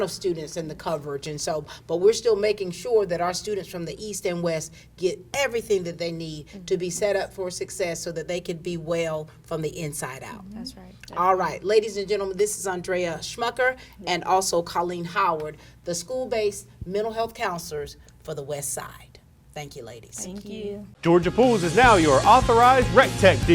of students and the coverage. And so, but we're still making sure that our students from the east and west get everything that they need to be set up for success, so that they can be well from the inside out. That's right. All right, ladies and gentlemen, this is Andrea Schmucker and also Colleen Howard, the school-based mental health counselors for the West Side. Thank you, ladies. Thank you. Georgia Pools is now your authorized Rec Tech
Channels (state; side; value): identical; both; correlation 1.00